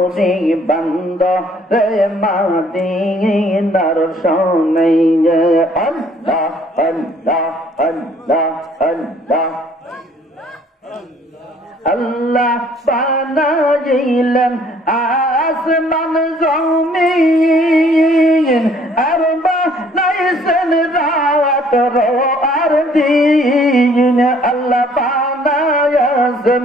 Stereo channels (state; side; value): normal; both; correlation 0.60